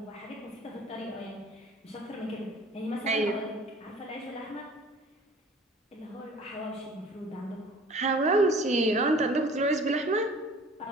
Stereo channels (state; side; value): normal; both; correlation 0.48